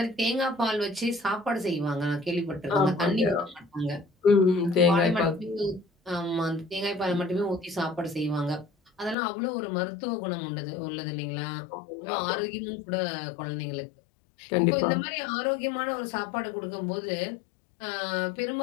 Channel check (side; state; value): right; drops out; at 9.2 s